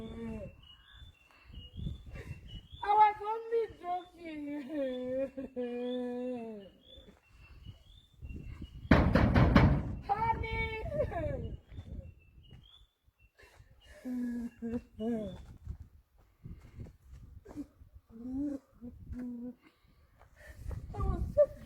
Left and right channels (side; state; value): both; identical; correlation 1.00